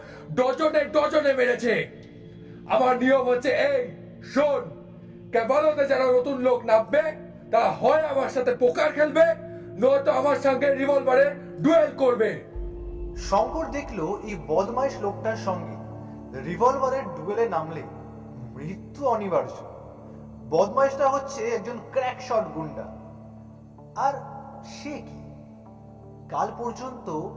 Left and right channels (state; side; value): identical; both; correlation 1.00